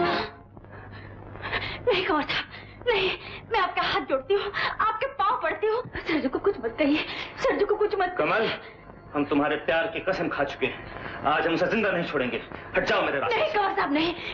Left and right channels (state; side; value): identical; both; correlation 1.00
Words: नहीं कुंवर साहब, नहीं, मैं आपका हाथ जोड़ती हूँ, आपके पाँव पड़ती हूँ। सरजू को कुछ मत कहिए, सरजू को कुछ मत। कमल, हम तुम्हारे प्यार की कसम खा चुके हैं। आज हम उसे जिंदा नहीं छोड़ेंगे। हट जाओ मेरे रास्ते। नहीं कुंवर साहब, नहीं,